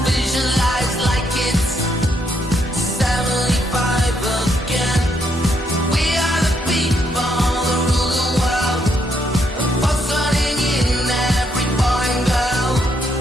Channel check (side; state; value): both; normal; correlation 0.75